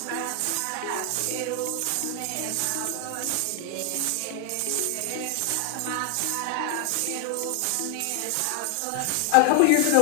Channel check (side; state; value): both; different; correlation 0.00